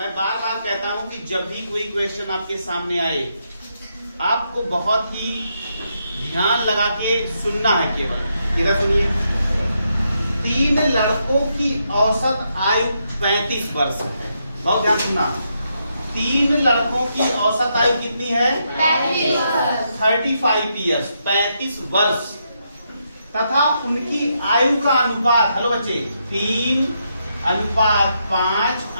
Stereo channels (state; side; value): inverted; both; correlation -0.80